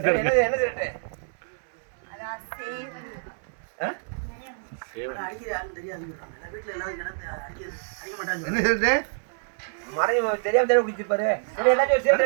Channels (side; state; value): left; silent; digital silence